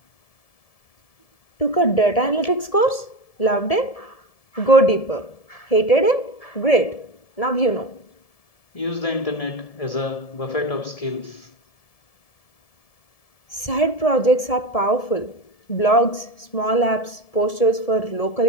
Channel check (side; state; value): right; late; 1.7 ms